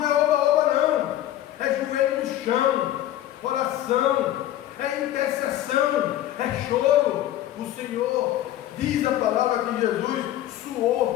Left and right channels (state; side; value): quieter; right; 13.1 dB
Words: é oba-oba não, é joelho no chão, oração, é intercessão, é choro. O Senhor diz a palavra que Jesus